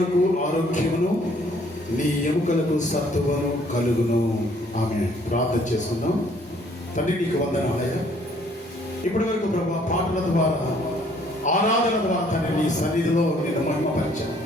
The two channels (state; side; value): normal; both; correlation 0.62